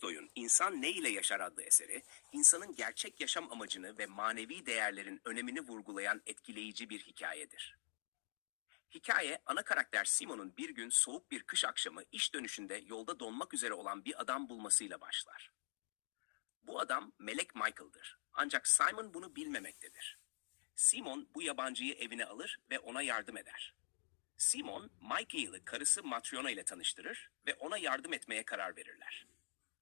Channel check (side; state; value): right; silent; digital silence